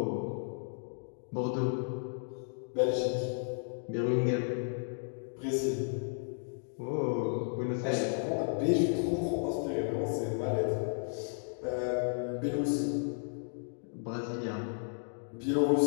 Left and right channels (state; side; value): silent; right; digital silence